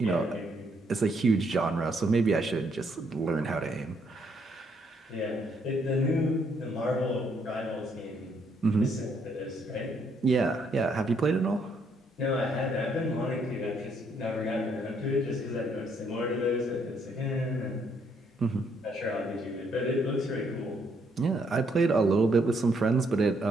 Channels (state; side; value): normal; both; correlation 0.71